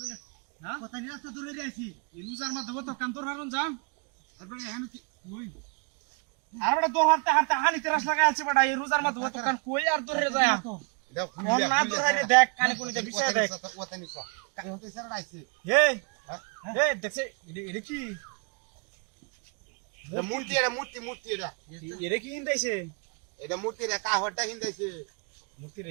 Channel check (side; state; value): left; quieter; 34.5 dB